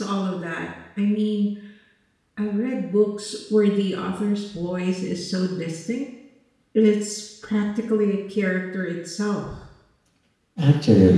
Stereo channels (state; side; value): identical; both; correlation 1.00